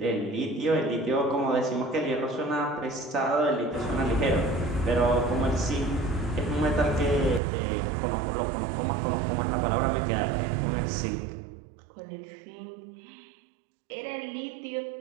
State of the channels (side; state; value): left; drops out; at 7.4 s